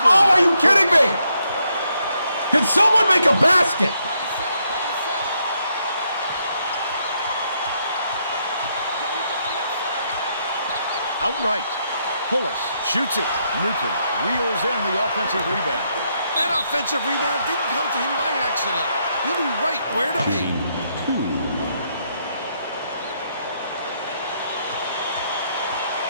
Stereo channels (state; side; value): inverted; both; correlation -0.76